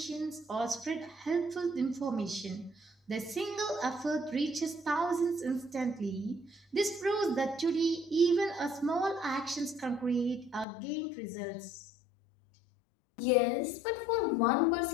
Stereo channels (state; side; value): drops out; right; at 10.7 s